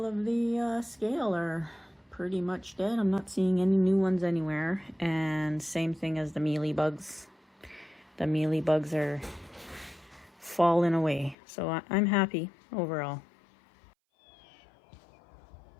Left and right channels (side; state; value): right; drops out; at 11.4 s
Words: of the scale are pretty much dead. I'm not seeing any new ones anywhere. And same thing as the mealybugs. The mealybugs are falling away. So I'm happy overall.